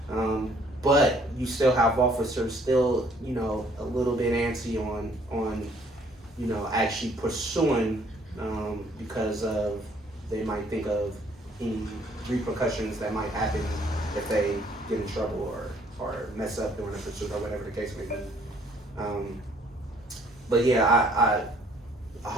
but you still have officers still, a little bit antsy on actually pursuing, because they might think of any repercussions that might happen if they get in trouble or mess up during a pursuit or whatever the case may be. But yeah, I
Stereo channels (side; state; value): both; normal; correlation 0.62